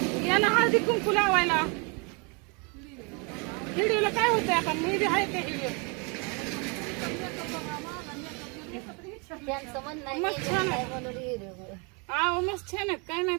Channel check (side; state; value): left; quieter; 32.5 dB